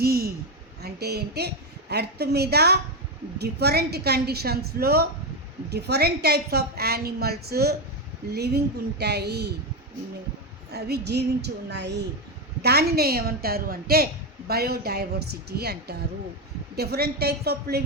అంటే ఏంటి? ఎర్త్ మీద డిఫరెంట్ కండిషన్స్లో different types of animals living ఉంటాయి, అవి జీవించి ఉన్నాయి. దానినే ఏమంటారు అంటే బయోడైవర్సిటీ అంటారు. Different types of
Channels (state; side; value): normal; both; correlation 0.09